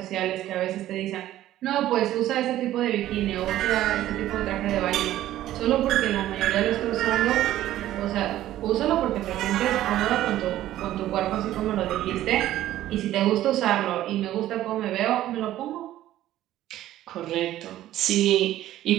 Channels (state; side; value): quieter; left; 13.7 dB